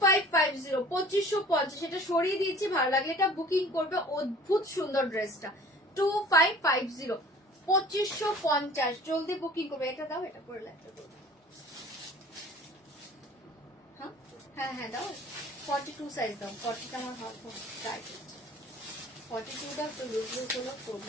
2550। এটা সরিয়ে দিচ্ছি, ভালো লাগলে এটা বুকিং করবে। অদ্ভুত সুন্দর ড্রেসটা, 2550, 2550। জলদি বুকিং করবে। এটা দাও, এটা পরে লাগবে। হ্যাঁ হ্যাঁ দাও, 42 সাইজ দাও। 40টা আমার হাত টাইট হচ্ছে, 42টা তো লুজ লুজ হলো,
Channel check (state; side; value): normal; both; correlation 0.47